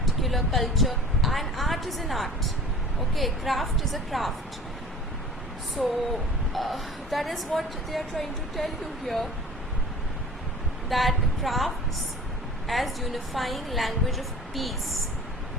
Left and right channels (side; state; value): both; normal; correlation 0.44